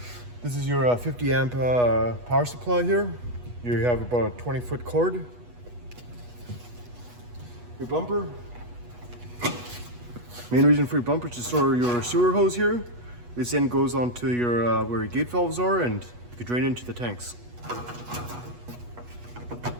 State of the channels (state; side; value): late; left; 8.2 ms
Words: This is your 50 amp power supply here. You have about a 20-foot cord. Your bumper. Main reason for your bumper is to store your sewer hose here. This end goes onto your where your gate valves are and you can drain into the tanks.